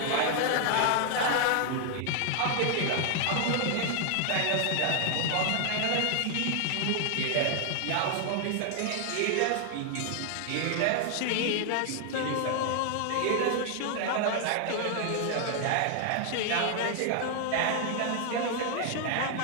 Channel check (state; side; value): different; both; correlation 0.00